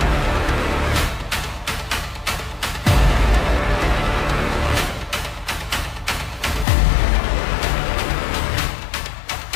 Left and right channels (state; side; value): drops out; right; at 6.7 s